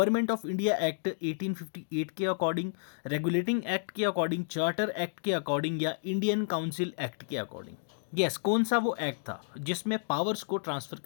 ऑफ इंडिया एक्ट 1858 के अकॉर्डिंग, रेगुलेटिंग एक्ट के अकॉर्डिंग, चार्टर एक्ट के अकॉर्डिंग, या इंडियन काउंसिल एक्ट के अकॉर्डिंग। यस, कौन सा वो एक्ट था जिसमें पावर्स को ट्रांसफर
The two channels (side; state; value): right; silent; digital silence